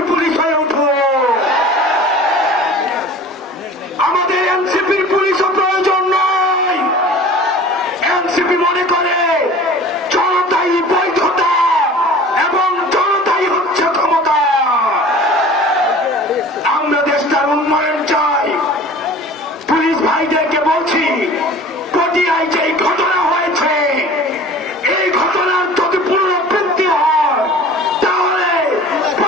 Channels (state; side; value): normal; both; correlation 0.43